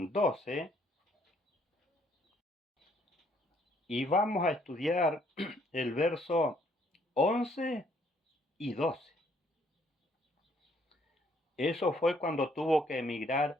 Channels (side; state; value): both; normal; correlation 0.66